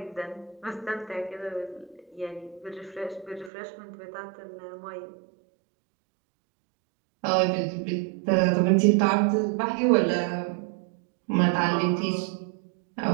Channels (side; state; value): left; drops out; at 3.5 s